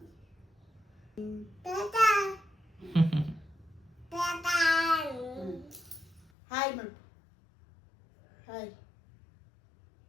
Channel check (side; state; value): right; drops out; at 6.3 s